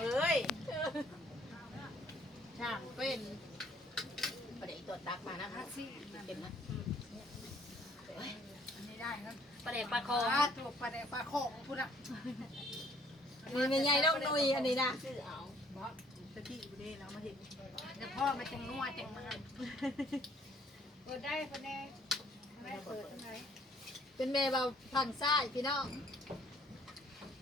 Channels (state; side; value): normal; both; correlation 0.62